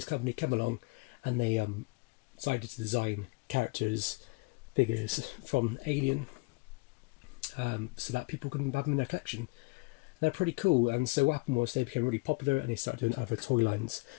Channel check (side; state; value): right; quieter; 26.8 dB